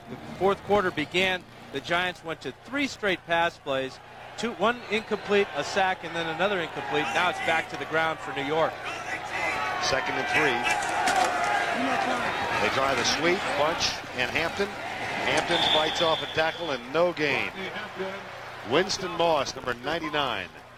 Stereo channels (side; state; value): both; identical; correlation 1.00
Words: the fourth quarter began, the Giants went to 3 straight pass plays, 1 incomplete, a sack, and then another incomplete. Now it's back to the ground for New York. Second and 3. They try the sweep, Bunch and Hampton. Hampton fights off a tackle and no gain. Winston Moss, number 99,